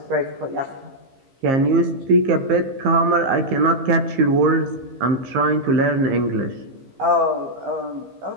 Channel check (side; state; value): left; late; 15 ms